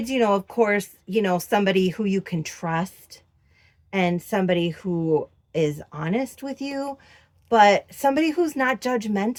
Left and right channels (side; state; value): both; identical; correlation 1.00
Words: of course, somebody who you can trust and somebody who is honest with you, but somebody who's not